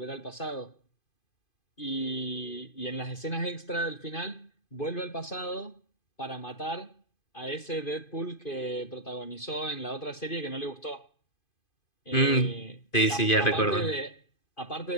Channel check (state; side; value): late; right; 2.5 ms